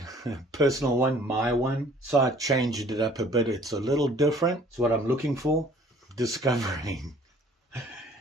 a personal one, my one. So I changed it up a bit. It's a little different. It's what I'm looking for. Discovering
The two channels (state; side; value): normal; both; correlation 0.54